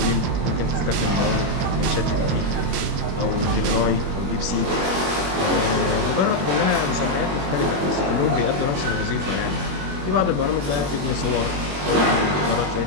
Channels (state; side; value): late; left; 21 ms